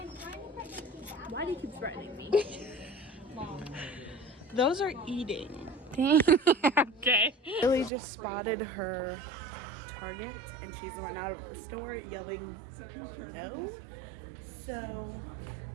Why do you keep threatening me? Those are eating. Okay. Lily just spotted her target, and she's run out of the store yelling no. So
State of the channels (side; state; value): left; drops out; at 7.9 s